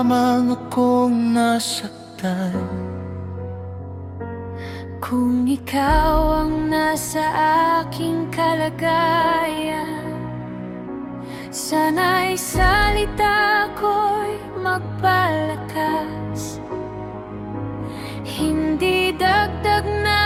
akong nasaktan. Kung ikaw ang nasa aking kalagayan, sana'y salita ko'y magpalakas. Hindi dagdag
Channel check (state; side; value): identical; both; correlation 1.00